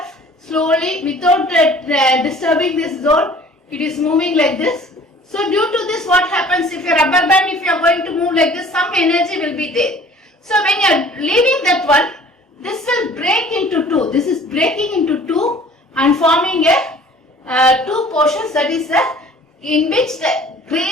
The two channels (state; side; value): normal; both; correlation 0.50